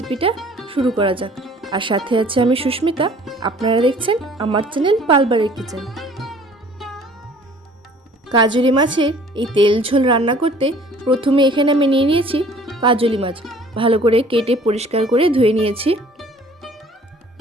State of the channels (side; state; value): both; normal; correlation 0.53